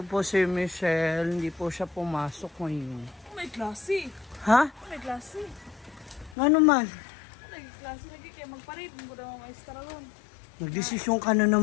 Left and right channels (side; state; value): right; drops out; at 6.4 s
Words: po si Michelle. Hindi po siya pumasok ngayon. May klase. Ha? May klase. Ano man? May klase lagi kaya magparid. Hindi ko daw maestra ron. Nagdesisyon ka na